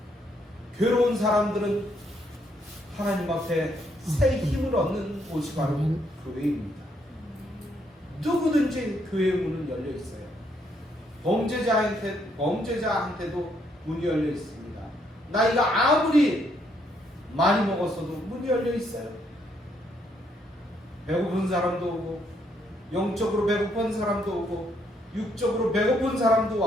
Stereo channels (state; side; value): normal; both; correlation 0.72